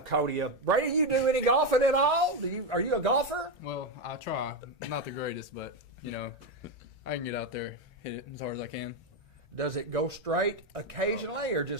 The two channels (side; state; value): both; normal; correlation 0.09